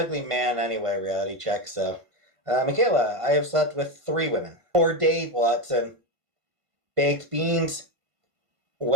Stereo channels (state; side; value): late; left; 1.5 ms